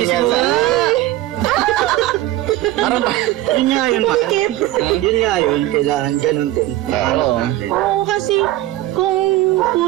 yan. mo nga. Parang Yun nga yun, man. Pikip. Yun nga yun, kailangan ganun din. Oo. Oo, kasi kung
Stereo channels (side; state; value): left; quieter; 15.6 dB